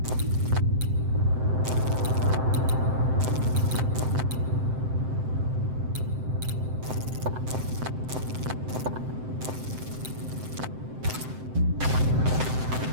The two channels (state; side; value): late; left; 7.8 ms